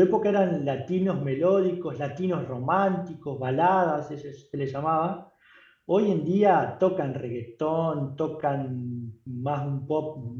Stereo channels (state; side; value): identical; both; correlation 1.00